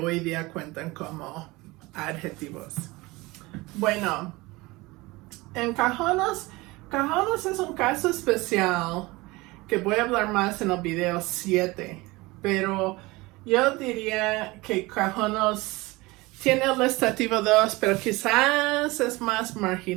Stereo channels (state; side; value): quieter; left; 22.1 dB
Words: día cuentan como adjetivos. Bueno, en Cajonos es un caso especial que voy a hablar más en el video 7, pero yo diría que Cajonos tiene el estativo 2, pero quizás es más